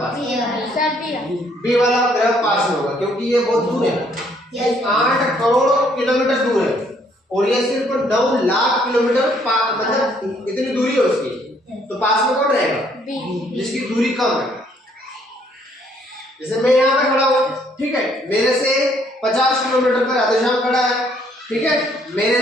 बी वाला ग्रह पास में होगा क्योंकि ये बहुत दूर है। 8 करोड़ किलोमीटर दूर है और ये सिर्फ 9 लाख किलोमीटर मतलब इतनी दूरी है उसकी, तो पास में कौन रहेगा? जिसकी दूरी कम है। जैसे मैं यहाँ पे खड़ा हूँ, ठीक है, मेरे से 50 किलोमीटर पर राधेश्याम खड़ा है, ठीक है, मेरे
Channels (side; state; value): both; normal; correlation 0.66